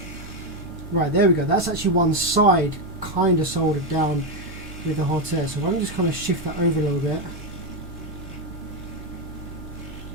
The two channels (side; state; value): both; normal; correlation 0.07